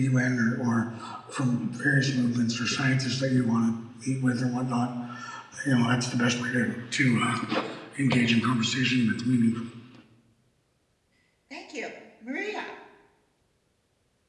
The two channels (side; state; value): both; identical; correlation 1.00